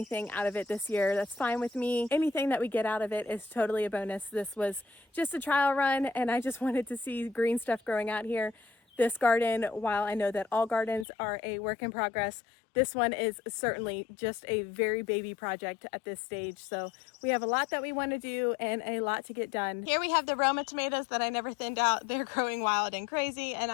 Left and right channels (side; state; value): right; drops out; at 11.1 s